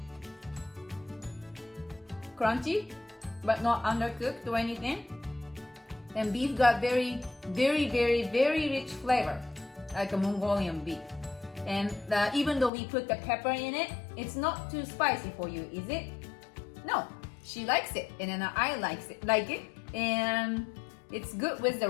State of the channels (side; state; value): right; drops out; at 12.7 s